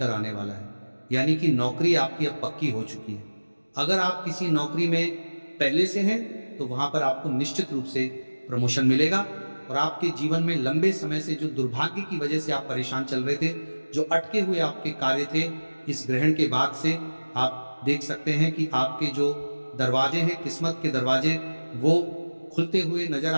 आने वाला है, यानी कि नौकरी आपकी अब पक्की हो चुकी है। अगर आप किसी नौकरी में पहले से हैं तो वहां पर आपको निश्चित रूप से प्रमोशन मिलेगा और आपके जीवन में लंबे समय से जो दुर्भाग्य की वजह से आप परेशान चल रहे थे, जो अटके हुए आपके कार्य थे, इस ग्रहण के बाद से आप देख सकते हैं कि आपके जो दरवाजे हैं, किस्मत के दरवाजे, वो खुलते हुए नजर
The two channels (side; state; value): both; inverted; correlation -1.00